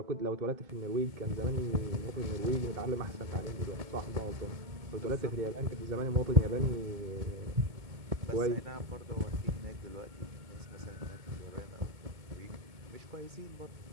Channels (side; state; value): left; late; 2.2 ms